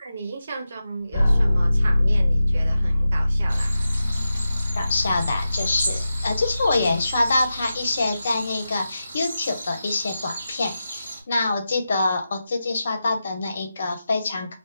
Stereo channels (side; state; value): both; inverted; correlation -0.91